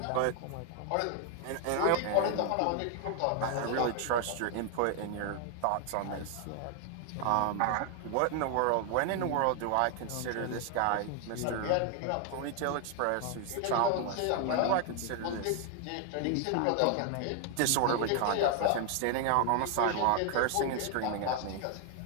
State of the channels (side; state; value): both; different; correlation 0.00